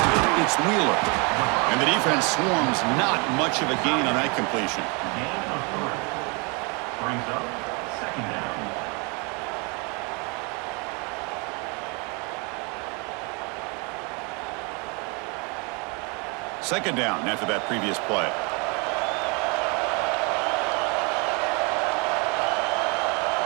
It's Wheeler. And the defense swarms. Not much of a gain on that completion. Gain of 3. Brings up 2nd down. Second down after that previous play.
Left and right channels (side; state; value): left; quieter; 31.5 dB